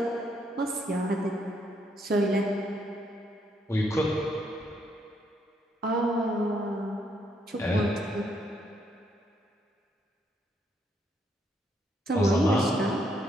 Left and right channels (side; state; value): both; normal; correlation 0.74